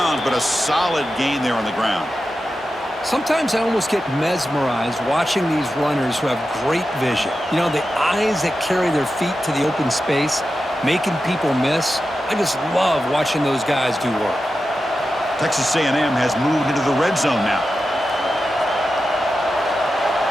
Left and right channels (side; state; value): both; normal; correlation 0.91